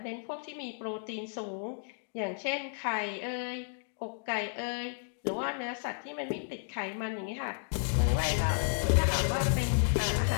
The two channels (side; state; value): right; silent; 56 dB below the other